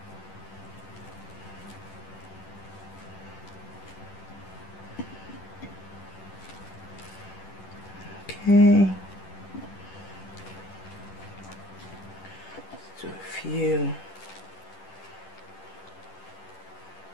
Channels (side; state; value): right; late; 10 ms